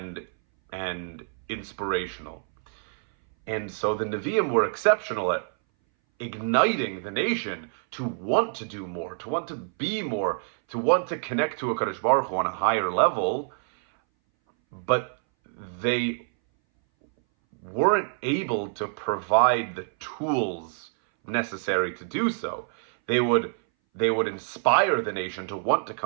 inspirational. And so the Nevi'im were exceptional at igniting the nation to want to do more, to want to be more, to want to connect to HaKadosh Baruch Hu on a higher level, but they weren't able to provide the tools necessary to do so. They would they would inspire the nation to want to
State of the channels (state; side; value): silent; left; 59 dB below the other